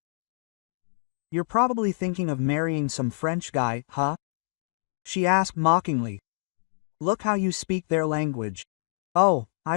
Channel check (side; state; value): right; silent; digital silence